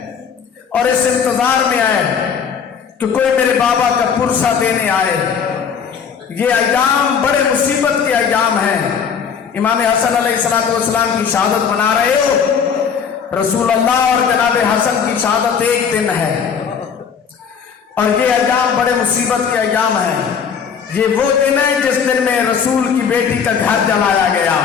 اور اس انتظار میں آئے کہ کوئی میرے بابا کا پرسہ دینے آئے. یہ ایام بڑے مصیبت کے ایام ہیں. امام حسن علیہ السلام کی شہادت منا رہے ہو. رسول اللہ اور جناب حسن کی شہادت ایک دن ہے اور یہ ایام بڑے مصیبت کے ایام ہیں. یہ وہ دن ہے جس دن میں رسول کی بیٹی کا گھر جلایا گیا.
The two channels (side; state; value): right; quieter; 6.9 dB